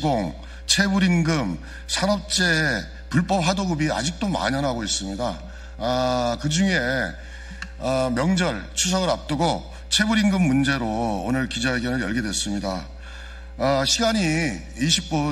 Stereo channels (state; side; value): identical; both; correlation 1.00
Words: 체불임금, 산업재해, 불법 하도급이 아직도 만연하고 있습니다. 그 중에 명절, 추석을 앞두고 체불임금 문제로 오늘 기자회견을 열게 됐습니다. 시간이